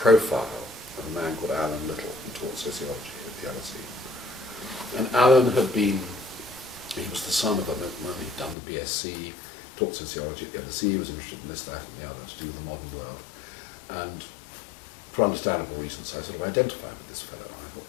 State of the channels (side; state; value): right; drops out; at 8.6 s